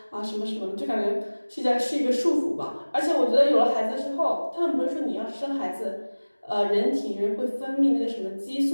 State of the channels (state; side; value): inverted; both; correlation -1.00